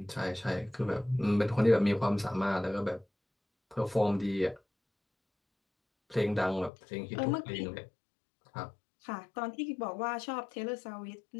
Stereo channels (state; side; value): drops out; right; at 6.7 s